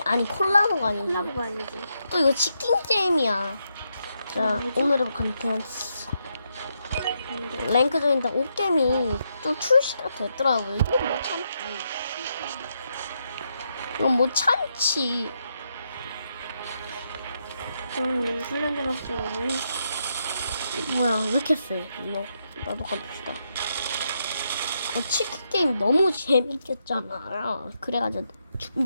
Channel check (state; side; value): inverted; both; correlation -0.80